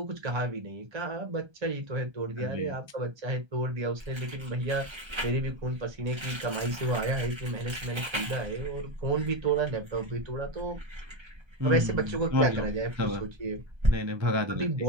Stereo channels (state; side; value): late; left; 1.3 ms